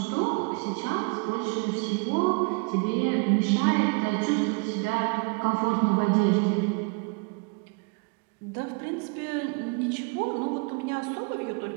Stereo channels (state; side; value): quieter; left; 32.5 dB